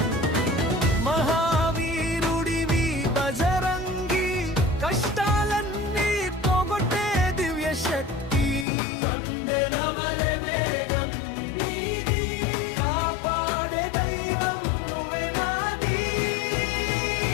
మహావీరుడివి బజరంగి కష్టాలన్నీ పోగొట్టే దివ్య శక్తి కందెనవలె వేగం నీది కాపాడే దైవం నువ్వే నాది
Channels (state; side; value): drops out; right; at 8.7 s